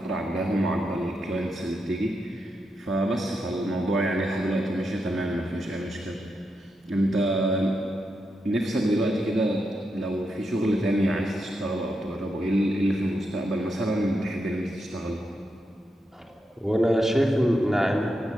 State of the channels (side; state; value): both; normal; correlation 0.84